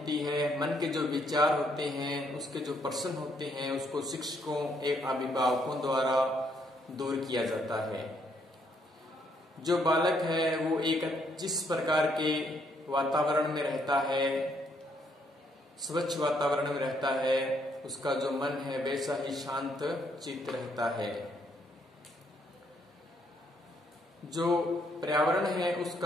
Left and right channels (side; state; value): both; normal; correlation 0.71